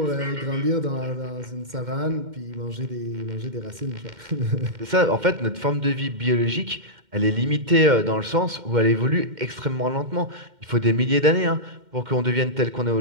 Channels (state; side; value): late; left; 2.1 ms